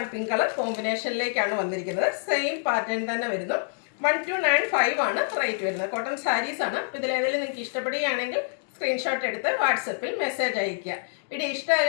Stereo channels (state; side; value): silent; right; digital silence